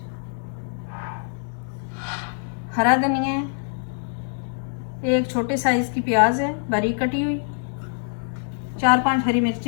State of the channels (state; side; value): silent; right; 62 dB below the other